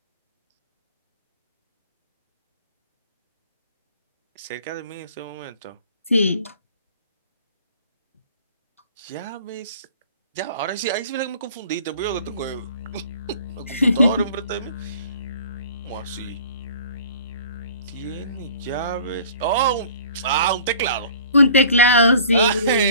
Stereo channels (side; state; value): both; inverted; correlation -0.49